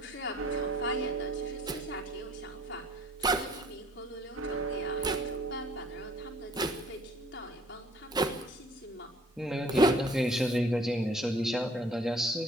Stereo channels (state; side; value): normal; both; correlation 0.56